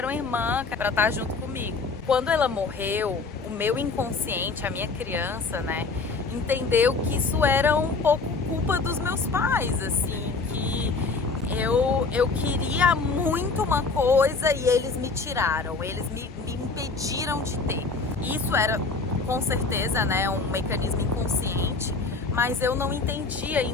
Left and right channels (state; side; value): quieter; right; 4.2 dB